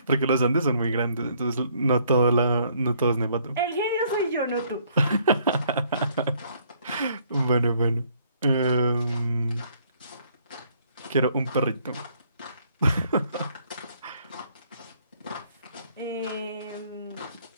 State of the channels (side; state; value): both; inverted; correlation -0.65